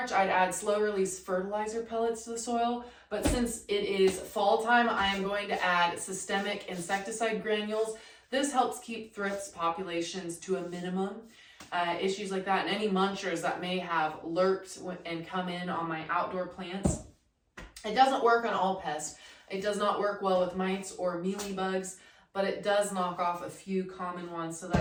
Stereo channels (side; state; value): both; identical; correlation 1.00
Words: I'd add slow release fertilizer pellets to the soil. But since it is fall time, I am going to add systemic insecticide granules. This helps keep thrips populations to a minimum. Issues like that and any munchers that may have lurked and come in on my outdoor plants. It doesn't work on all pests. It does not work well with mites or mealybugs, but it does knock off a few common ones, so